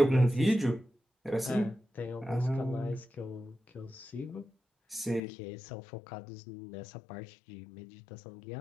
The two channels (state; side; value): drops out; right; at 5.2 s